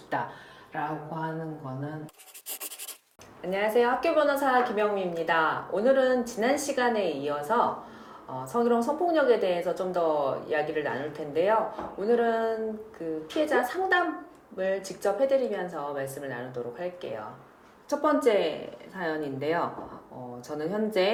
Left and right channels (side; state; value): both; identical; correlation 1.00